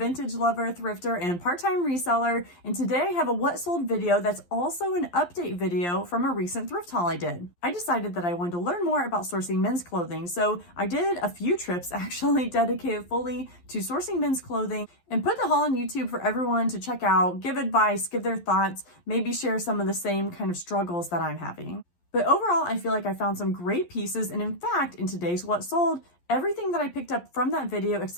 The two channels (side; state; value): right; late; 11 ms